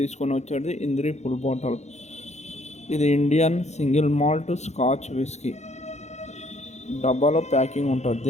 వచ్చేది ఇంద్రి ఫుల్ బాటిల్. ఇది Indian single malt scotch whisky డబ్బాలో ప్యాకింగ్ ఉంటుంది.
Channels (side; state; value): right; late; 0.33 ms